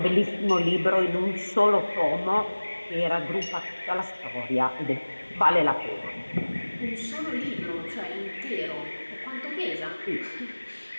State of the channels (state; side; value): inverted; both; correlation -1.00